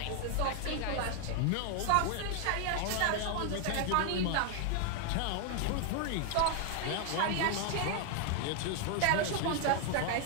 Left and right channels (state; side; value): different; both; correlation 0.00